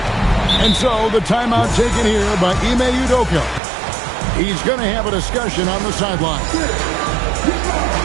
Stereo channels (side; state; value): left; drops out; at 3.6 s